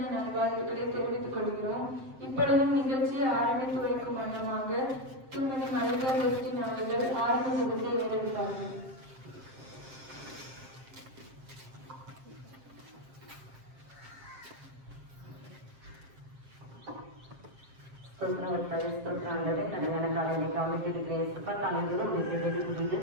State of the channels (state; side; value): late; left; 7.5 ms